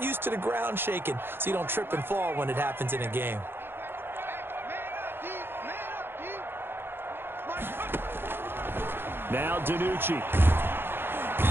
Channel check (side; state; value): left; late; 0.10 ms